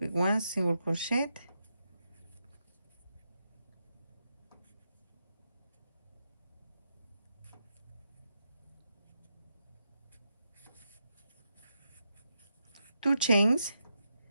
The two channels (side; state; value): both; inverted; correlation -0.85